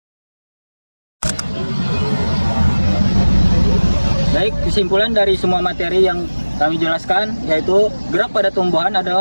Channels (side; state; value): both; inverted; correlation -1.00